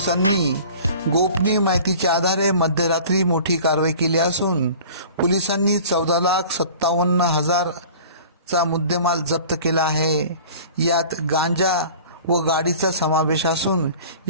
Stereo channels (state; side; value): inverted; both; correlation -0.44